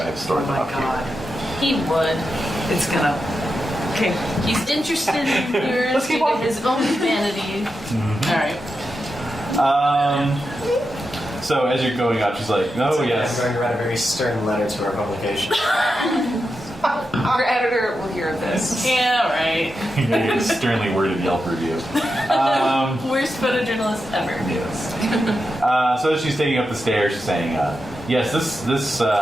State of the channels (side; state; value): both; normal; correlation 0.88